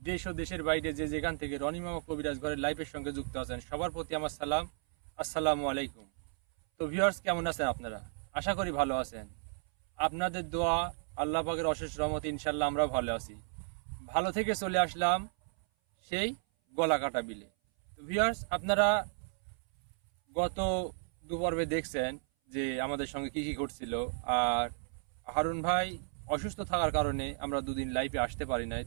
দেশ ও দেশের বাইরে যে যেখান থেকে রনি মামা কবিরাজ ঘরের লাইভের সঙ্গে যুক্ত আছেন সবার প্রতি আমার সালাম, আসসালামু আলাইকুম। তো ভিউয়ার্স, কেমন আছেন আপনারা? আশা করি ভালো আছেন। আপনাদের দোয়া, আল্লাহ পাকের অশেষ রহমতে ইনশাল্লাহ আমরা ভালো আছি। ভালো থেকে চলে আসলাম সেই গলাকাটা বিলে। তো ভিউয়ার্স, আপনারা গত দুপর্বে দেখছেন যে আমাদের সঙ্গে কি কি ঘটছিল। আর হারুন ভাই অসুস্থ থাকার কারণে আমরা দুদিন লাইভে আসতে পারি নাই।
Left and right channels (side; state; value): left; silent; 55 dB below the other